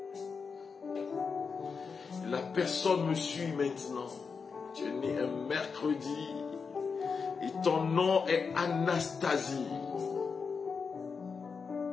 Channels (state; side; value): quieter; right; 5.4 dB